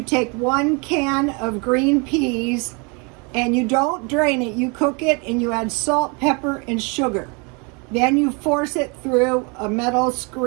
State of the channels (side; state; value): left; quieter; 32.0 dB